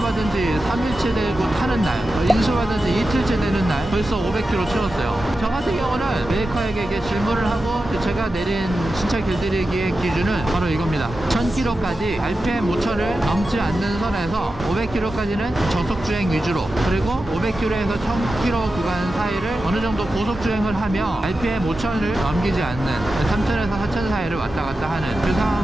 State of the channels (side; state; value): both; normal; correlation 0.92